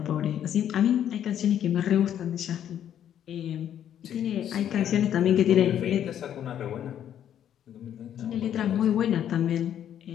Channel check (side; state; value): right; quieter; 10.1 dB